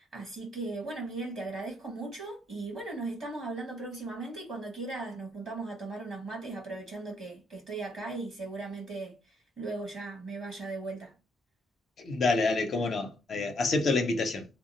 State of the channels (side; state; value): both; normal; correlation 0.72